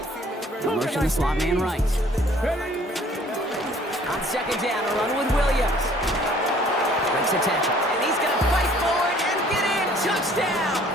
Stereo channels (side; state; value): both; normal; correlation 0.56